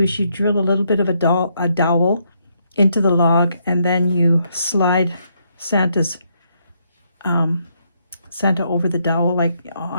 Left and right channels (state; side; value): inverted; both; correlation -0.75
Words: is you drill a little bit of a dowel into the log, and then you slide Santa over the dowel, like